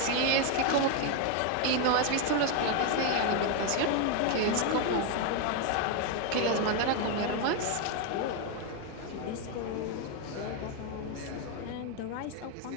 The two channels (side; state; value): both; different; correlation 0.01